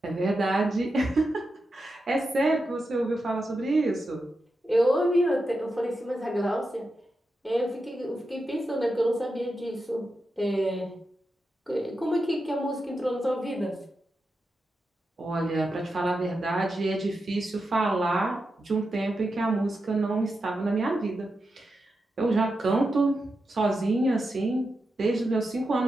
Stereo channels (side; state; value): both; normal; correlation 0.88